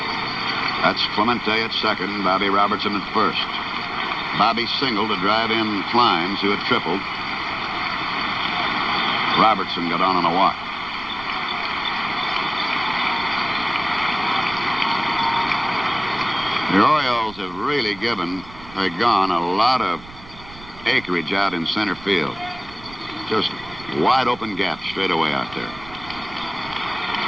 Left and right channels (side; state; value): right; noise; rumble, 19 dB below the sound